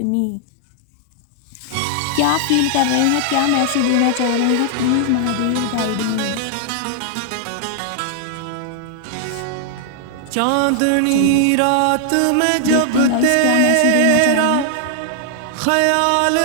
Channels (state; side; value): different; both; correlation 0.00